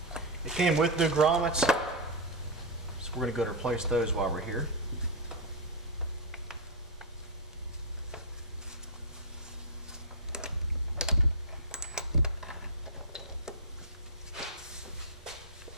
It came with new grommets, so we're going to go to replace those while we're here.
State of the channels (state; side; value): normal; both; correlation -0.01